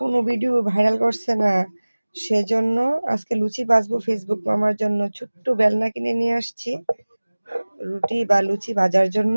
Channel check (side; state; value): both; inverted; correlation -1.00